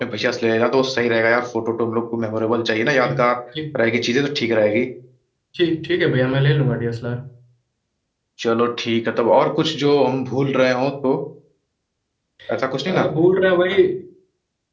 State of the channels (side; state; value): both; identical; correlation 1.00